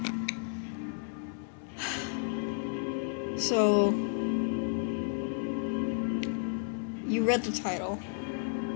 So, you read the title.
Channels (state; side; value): silent; right; 56 dB below the other